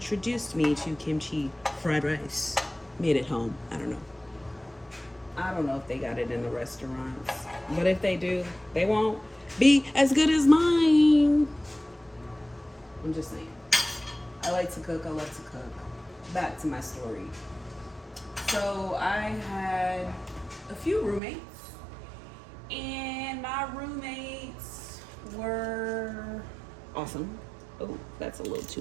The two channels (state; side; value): drops out; left; at 21.2 s